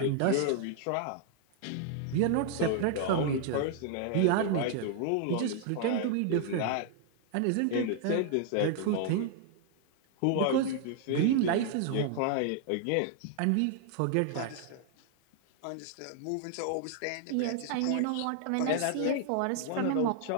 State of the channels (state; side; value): different; both; correlation 0.00